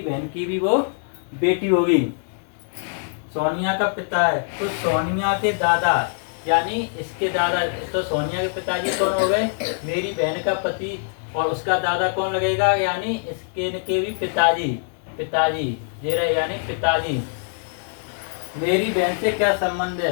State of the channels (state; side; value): silent; right; digital silence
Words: बहन की भी वो बेटी होगी। सोनिया का पिता है तो सोनिया के दादा, यानी इसके दादा। तो सोनिया के पिताजी कौन हो गए? मेरी बहन का पति। और उसका दादा कौन लगेगा? यानी इसके के भी पिताजी। पिताजी ये रहे, यानी पिताजी। मेरी बहन से क्या संबंध